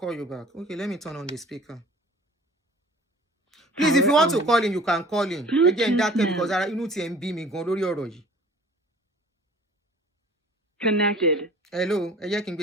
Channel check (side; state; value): both; normal; correlation 0.48